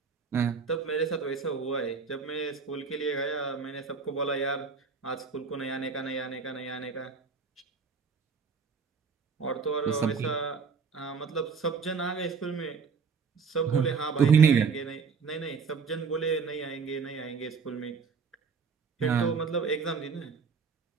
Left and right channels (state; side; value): quieter; left; 5.4 dB